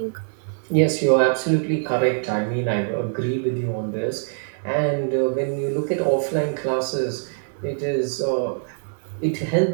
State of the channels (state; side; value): silent; left; digital silence